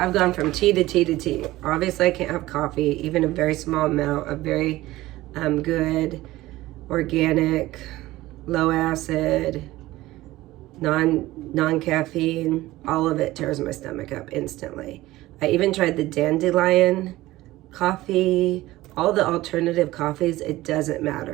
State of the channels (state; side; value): quieter; left; 17.3 dB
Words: gone from tea to tea to tea. Obviously I can't have coffee, even a very small amount of very good, organic, low acid, non-caffeine. All of it tears my stomach up instantly. I even tried the dandelion coffee, all the alternative coffees. It doesn't